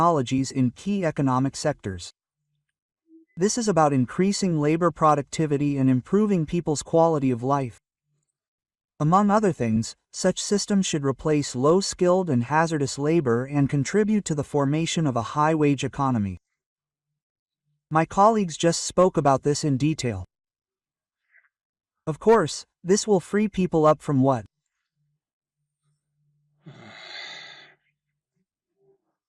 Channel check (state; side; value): identical; both; correlation 1.00